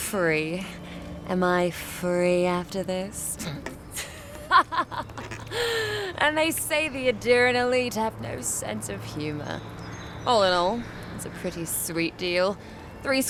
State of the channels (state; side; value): identical; both; correlation 1.00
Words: Am I free after this? And they say the Adiran elite have no sense of humor. All in all, it's a pretty sweet deal. 3